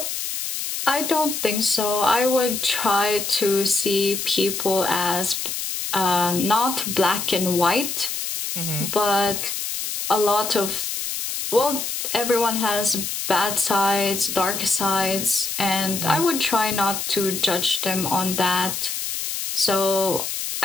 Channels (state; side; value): noise; left; hiss, 4 dB below the sound